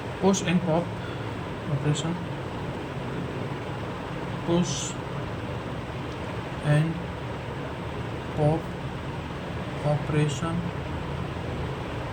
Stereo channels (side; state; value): both; identical; correlation 1.00